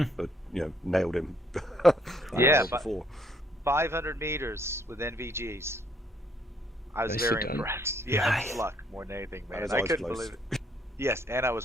nailed him. Yeah, before 500 meters with NVGs. I was very impressed. Yeah, nice. Luck more than anything, man. I couldn't believe it. Yes, and I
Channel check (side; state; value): both; normal; correlation 0.67